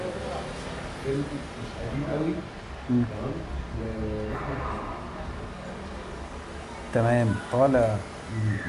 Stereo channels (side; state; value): both; identical; correlation 1.00